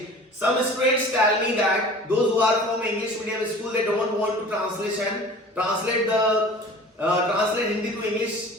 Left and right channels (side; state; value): both; normal; correlation 0.43